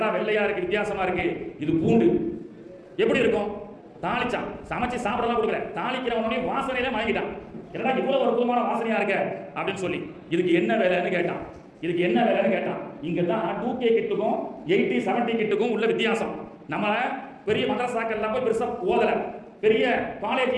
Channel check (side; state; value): both; identical; correlation 1.00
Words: வெள்ளையா இருக்கு, வித்தியாசமா இருக்கு, இது பூண்டு. எப்படி இருக்கும்? தாளிச்சான், சமைச்சு சாப்பிடலாம் கொடுக்கல, தாளிக்கிறவனே வாசனையில மயங்கிட்டான். என்னடா இவ்வளவு அற்புதமான வாசனையா இருக்க அப்படின்னு சொல்லி, இதுக்கு என்ன வேலைன்னு கேட்டான். இங்க தான் 2K கிட்டுக்கும் 80-70 கிட்டுக்கும் உள்ள வித்தியாசம். நம்ம பெரிய மதரசாக்கள்லாம் போய் பெருசா ஓதல, பெரிய காலேஜ்